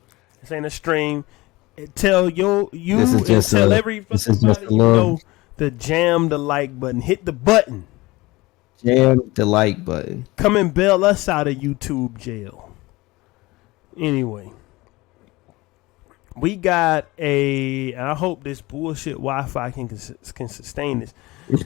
This ain't a stream. Tell this you is and just tell a every this fucking is just body a you little know to jam the like button. Hit the button. jam the like button. Come and bail us out of YouTube jail. Anyway. We got I hope this bullshit Wi-Fi can sustain this.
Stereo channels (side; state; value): right; quieter; 21.0 dB